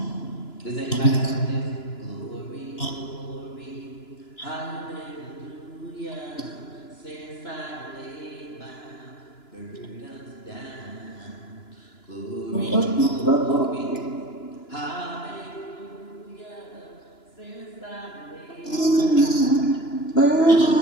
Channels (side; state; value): right; late; 2.9 ms